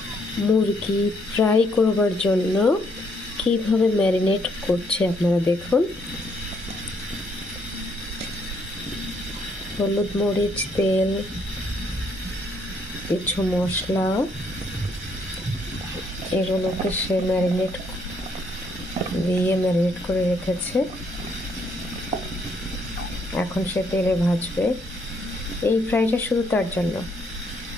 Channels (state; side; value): normal; both; correlation 0.71